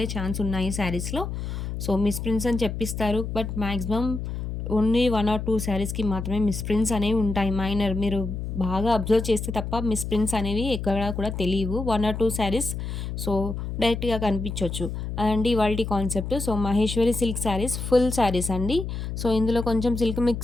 ఛాన్స్ ఉన్నాయి శారీస్‌లో. సో మిస్ ప్రింట్స్ అని చెప్పిస్తారు. బట్ మాక్సిమం ఓన్లీ 1 ఆర్ 2 శారీస్‌కి మాత్రమే మిస్ ప్రింట్స్ అనేవి ఉంటాయి. మైనర్ మీరు బాగా అబ్జర్వ్ చేస్తే తప్ప మిస్ ప్రింట్స్ అనేవి ఎక్కడా కూడా తెలియవు. 1 ఆర్ 2 శారీస్ సో డైరెక్ట్‌గా కనిపించొచ్చు. అండ్ ఇవాల్టి concept so Maheshwari silk saris full saris అండి. సో ఇందులో కొంచెం సిల్క్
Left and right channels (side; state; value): left; noise; hum, 5 dB below the sound